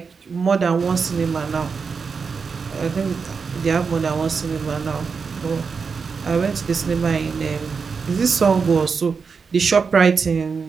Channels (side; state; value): left; quieter; 5.4 dB